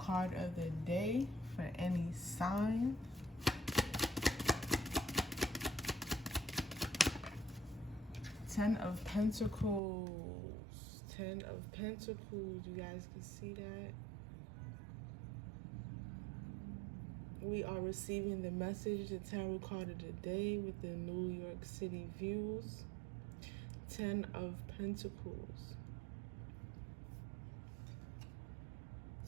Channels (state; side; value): drops out; left; at 9.8 s